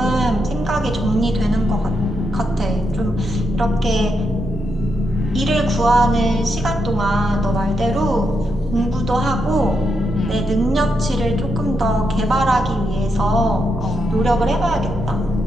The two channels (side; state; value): both; normal; correlation 0.82